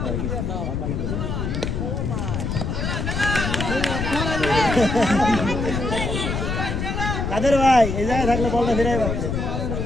কাদের ভাই এই জায়গায় থাকলে বলটা ফিরাই পারছে।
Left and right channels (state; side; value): noise; left; rumble, 2 dB below the sound